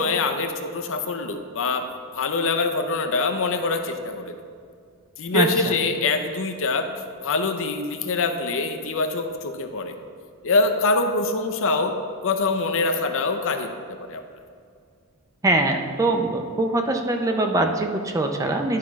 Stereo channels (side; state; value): both; normal; correlation -0.06